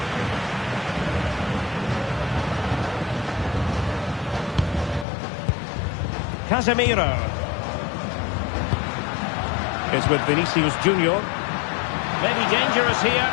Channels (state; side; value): drops out; right; at 5.1 s